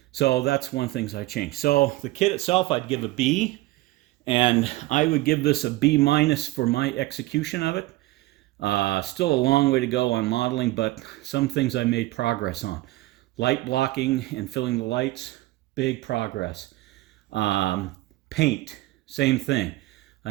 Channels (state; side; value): quieter; left; 18.6 dB